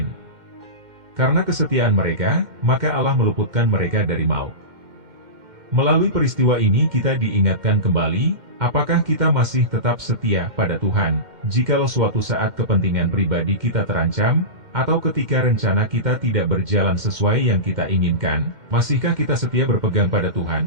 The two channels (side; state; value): left; late; 2.1 ms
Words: Karena kesetiaan mereka, maka Allah meluputkan mereka dari maut. Melalui peristiwa ini kita diingatkan kembali, apakah kita masih tetap setia pada Tuhan, jikalau suatu saat kepentingan pribadi kita terancam, atau ketika rencana kita tidak berjalan sesuai yang kita inginkan, masihkah kita setia berpegang pada